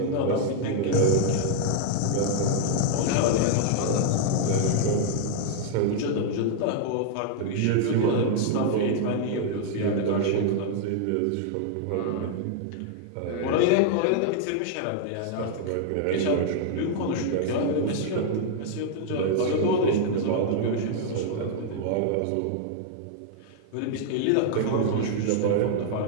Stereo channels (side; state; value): both; different; correlation 0.00